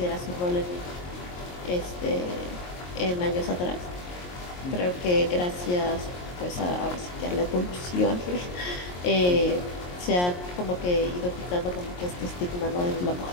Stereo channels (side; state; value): right; late; 22 ms